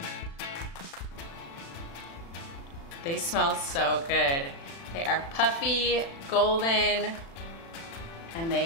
They smell so good. They are puffy, golden, and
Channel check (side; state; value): right; late; 36 ms